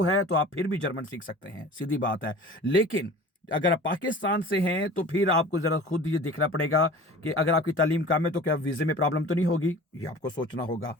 है तो आप फिर भी जर्मन सीख सकते हैं, सीधी बात है। लेकिन अगर आप पाकिस्तान से हैं तो फिर आपको जरा खुद ये देखना पड़ेगा कि अगर आपकी तालीम कम है तो क्या वीजे में प्रॉब्लम तो नहीं होगी, ये आपको सोचना होगा।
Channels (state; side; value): normal; both; correlation 0.41